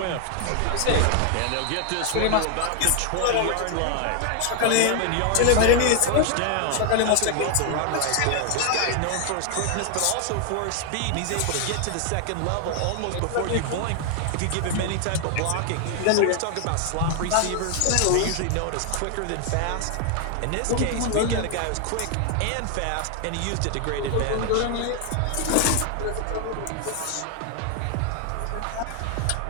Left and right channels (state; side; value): different; both; correlation 0.00